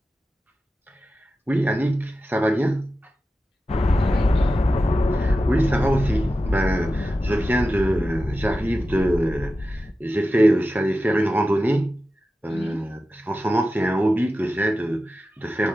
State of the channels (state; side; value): normal; both; correlation 0.92